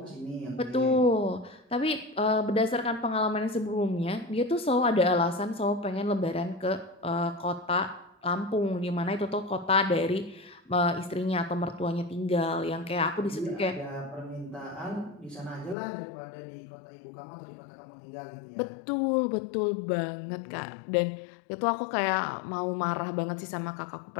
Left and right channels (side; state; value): right; drops out; at 15.8 s